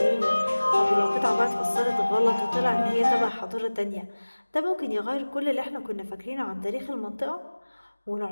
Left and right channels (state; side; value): inverted; both; correlation -1.00